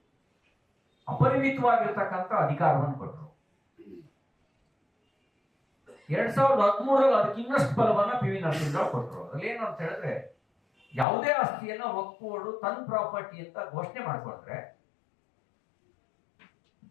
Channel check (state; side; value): drops out; right; at 11.1 s